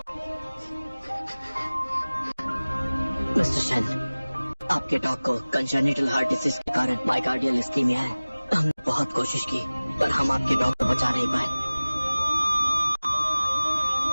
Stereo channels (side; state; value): both; inverted; correlation -0.99